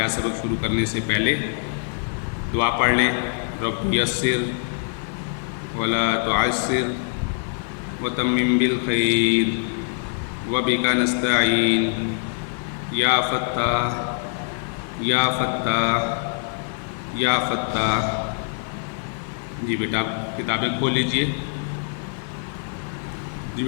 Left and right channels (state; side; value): silent; right; 58 dB below the other